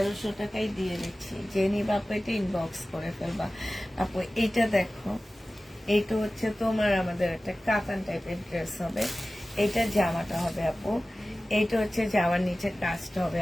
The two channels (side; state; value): both; normal; correlation 0.96